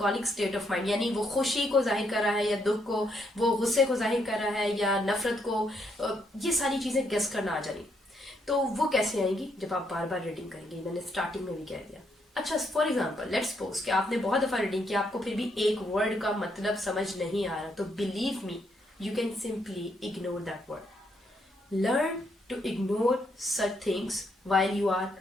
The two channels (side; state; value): both; normal; correlation 0.75